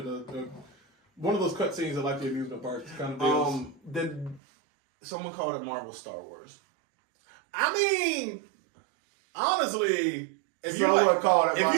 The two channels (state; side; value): drops out; left; at 4.4 s